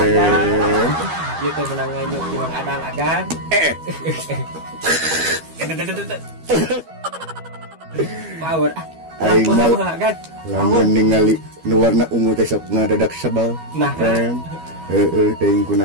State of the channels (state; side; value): late; left; 12 ms